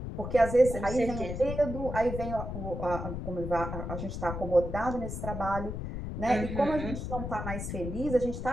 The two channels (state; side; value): noise; left; rumble, 5 dB below the sound